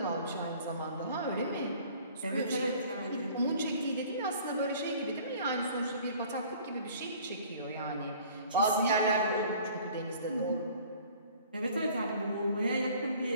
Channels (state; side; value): inverted; both; correlation -0.51